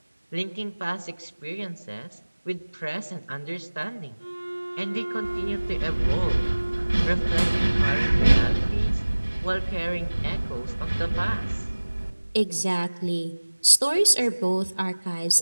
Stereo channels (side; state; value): both; inverted; correlation -1.00